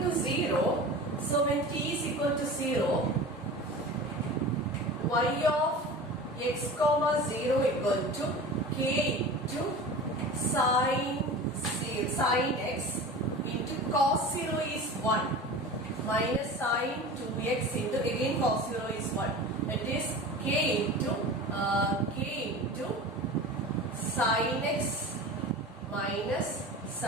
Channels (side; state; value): both; normal; correlation 0.34